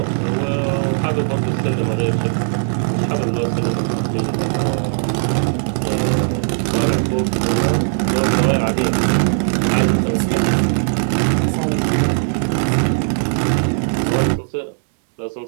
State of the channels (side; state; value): left; silent; digital silence